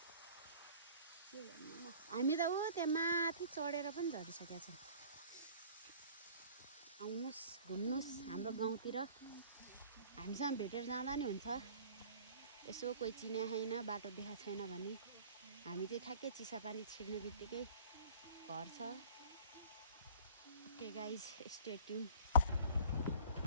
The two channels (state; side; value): inverted; both; correlation -0.48